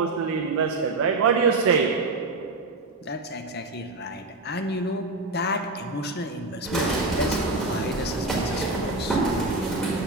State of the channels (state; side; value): quieter; left; 3.1 dB